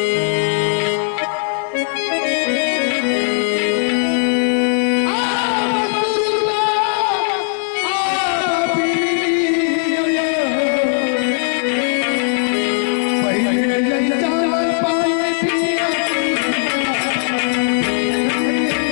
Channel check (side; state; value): right; silent; digital silence